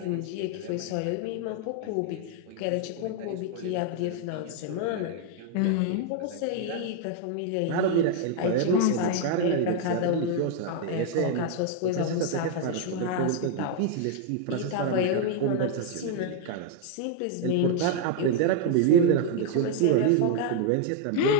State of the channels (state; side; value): different; both; correlation 0.00